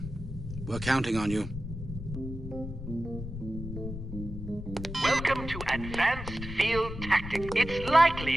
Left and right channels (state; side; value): noise; left; rumble, 8 dB below the sound